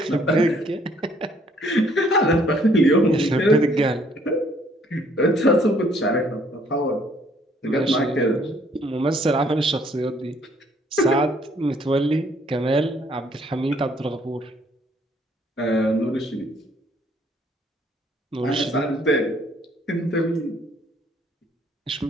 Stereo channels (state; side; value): normal; both; correlation 0.63